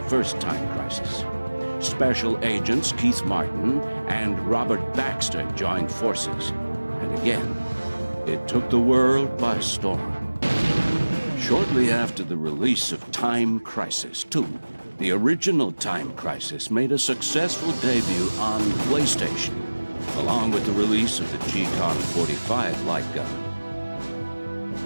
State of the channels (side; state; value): both; inverted; correlation -1.00